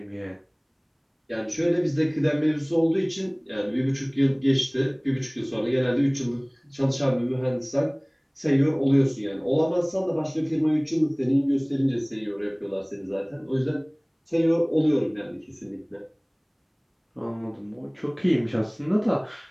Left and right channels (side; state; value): both; identical; correlation 1.00